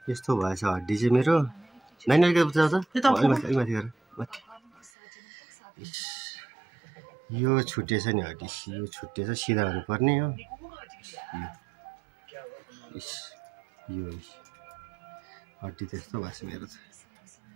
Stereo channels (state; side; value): drops out; left; at 4.9 s